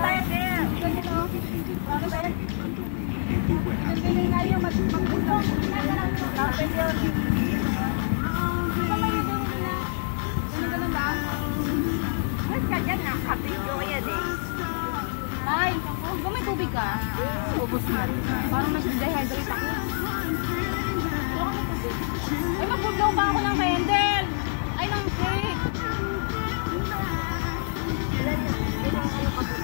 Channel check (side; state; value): right; silent; digital silence